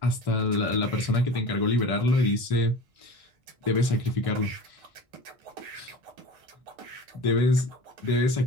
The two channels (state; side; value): late; left; 1.6 ms